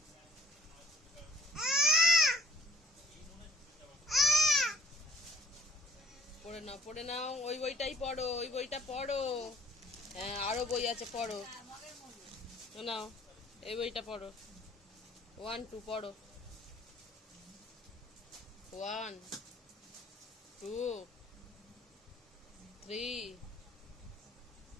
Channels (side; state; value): both; normal; correlation 0.58